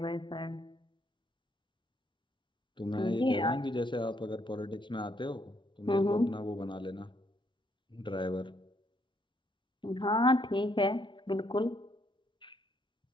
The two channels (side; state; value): right; late; 0.24 ms